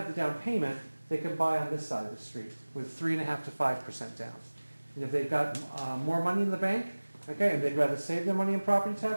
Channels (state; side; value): inverted; both; correlation -1.00